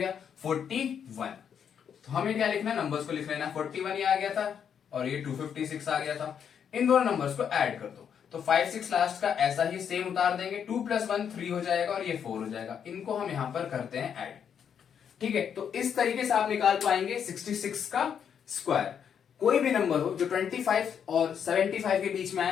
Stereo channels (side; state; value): right; quieter; 7.9 dB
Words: 41। तो हमें क्या लिखना है, नंबर्स को लिख लेना, 41 ये आ गया था और ये 256 आ गया था। इन दोनों नंबर्स को ऐड कर दो, तो 5 6 लास्ट का ऐसा ही सेम उतार देंगे, 2 + 1 3 हो जाएगा और ये 4 हो जाएगा। इनको हम यहां पर करते हैं ऐड, ठीक है। तो इस तरीके से आप निकाल पाएंगे 66 का स्क्वायर। कोई भी नंबर हो जो 25 और 75 के बीच में